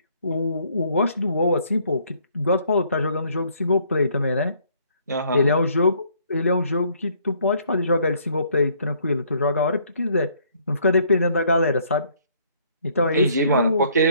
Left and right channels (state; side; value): inverted; both; correlation -0.64